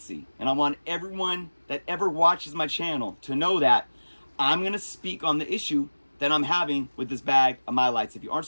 and I want everyone that ever watches my channel to know that I'm going to speak on the issue that I'm having with this bag of Mylites. If you aren't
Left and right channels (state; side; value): inverted; both; correlation -1.00